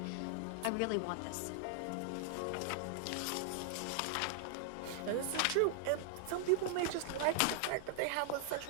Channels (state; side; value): different; both; correlation -0.01